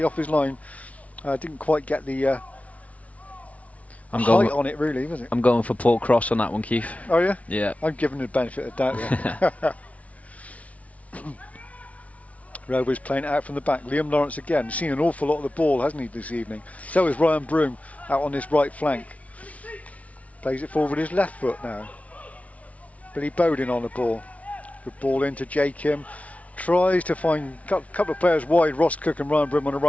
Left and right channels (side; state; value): right; late; 0.067 ms